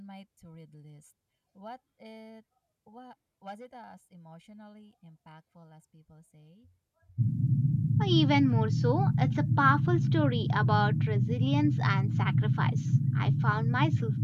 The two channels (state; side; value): identical; both; correlation 1.00